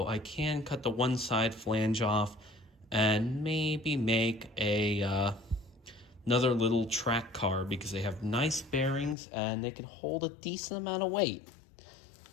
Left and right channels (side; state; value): right; drops out; at 9.2 s